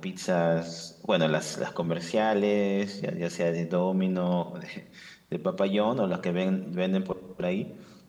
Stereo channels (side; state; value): both; identical; correlation 1.00